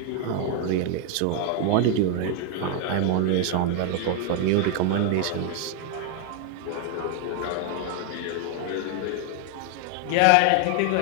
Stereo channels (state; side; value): different; both; correlation 0.00